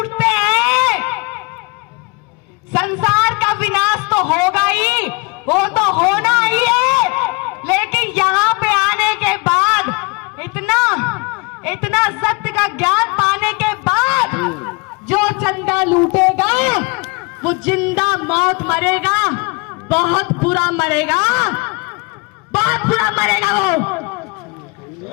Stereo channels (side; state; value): right; quieter; 28.9 dB